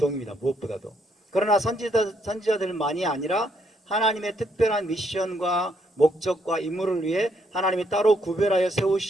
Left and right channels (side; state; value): both; normal; correlation 0.72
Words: 무엇보다도. 그러나 선지자들만이 아니라 하나님의 특별한 미션과 목적과 임무를 위해 하나님이 따로 구별하여